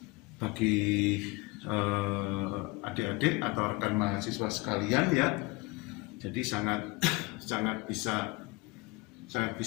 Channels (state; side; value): quieter; right; 24.2 dB